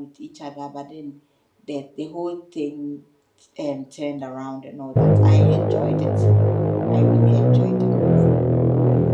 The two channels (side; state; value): both; identical; correlation 1.00